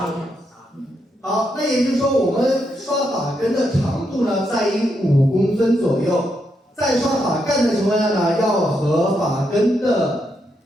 好，那也就是说，我们刷发根的长度呢，在于5公分左右。在刷发干的情况下呢，要和发根的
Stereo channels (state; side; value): normal; both; correlation 0.81